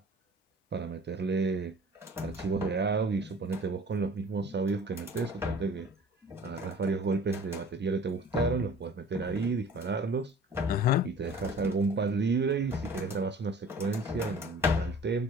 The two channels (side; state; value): both; normal; correlation 0.46